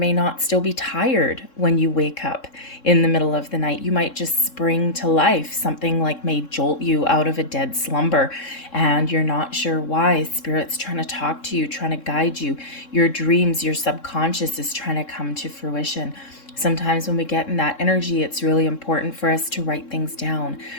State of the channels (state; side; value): late; right; 3.7 ms